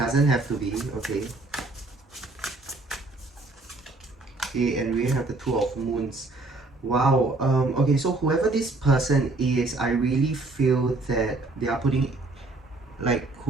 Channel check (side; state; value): left; quieter; 3.2 dB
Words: have to be. Okay. Okay, and we have the Two of Moons. Wow. Okay, so whoever this person is, I really feel that they are putting, like